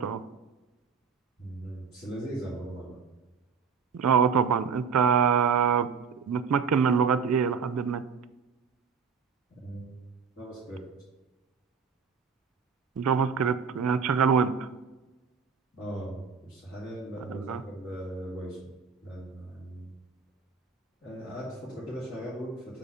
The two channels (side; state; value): left; quieter; 6.0 dB